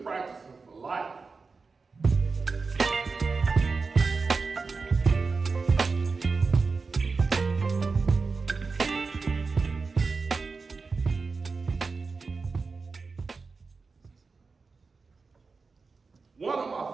for life. One of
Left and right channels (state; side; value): quieter; left; 4.4 dB